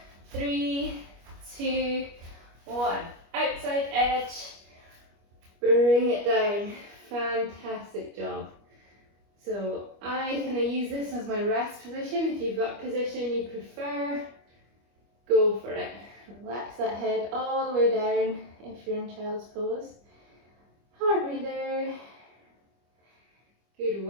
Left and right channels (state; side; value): late; left; 25 ms